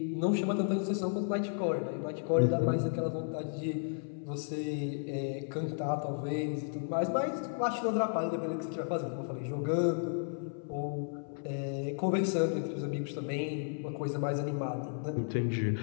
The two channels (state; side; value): silent; right; 55 dB below the other